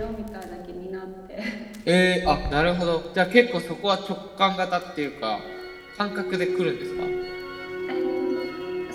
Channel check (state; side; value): identical; both; correlation 1.00